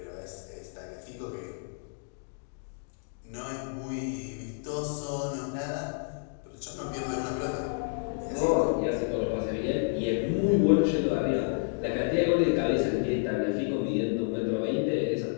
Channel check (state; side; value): silent; right; digital silence